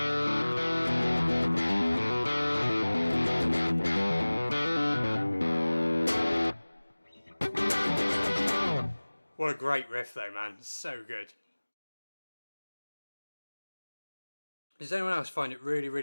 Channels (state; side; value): inverted; both; correlation -1.00